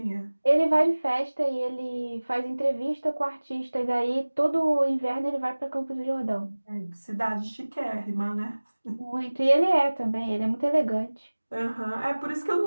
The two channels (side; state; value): both; inverted; correlation -1.00